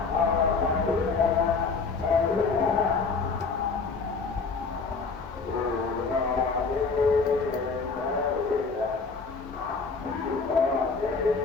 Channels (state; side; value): quieter; right; 4.6 dB